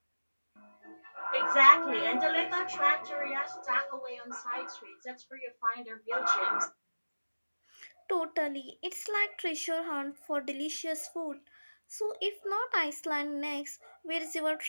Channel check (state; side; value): inverted; both; correlation -1.00